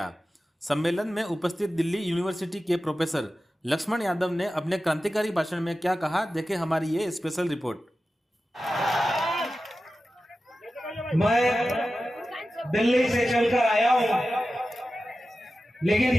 सम्मेलन में उपस्थित दिल्ली यूनिवर्सिटी के प्रोफेसर लक्ष्मण यादव ने अपने क्रांतिकारी भाषण में क्या कहा, देखें हमारी ये स्पेशल रिपोर्ट। मैं दिल्ली से चलकर आया हूं, लेकिन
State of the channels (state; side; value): normal; both; correlation 0.94